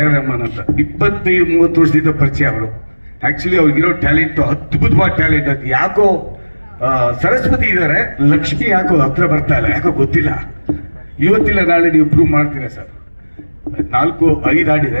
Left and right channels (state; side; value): inverted; both; correlation -1.00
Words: ರೆಹಮಾನ್ ಅಂತ. 25-30 ವರ್ಷದಿಂದ ಪರಿಚಯ ಅವರು. ಆಕ್ಚುಲಿ ಅವ್ರಿಗಿರೋ ಟ್ಯಾಲೆಂಟ್ ಅದ್ಭುತವಾದ ಟ್ಯಾಲೆಂಟ್. ಅದು ಯಾಕೋ ಸರಸ್ವತಿ ಇದ್ದಾರೆ, ಲಕ್ಷ್ಮಿ ಯಾಕೋ ಹತ್ರ ಬರ್ತಾ ಇಲ್ಲ, ಯಾಕೋ ಗೊತ್ತಿಲ್ಲ. ಇವತ್ತಿಲ್ಲ ನಾಳೆ ನೀವು ಪ್ರೂವ್ ಮಾಡ್ತೀರಾ ಸರ್. 4-5